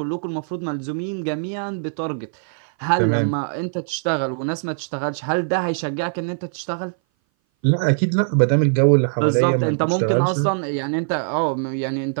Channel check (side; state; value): left; silent; 59 dB below the other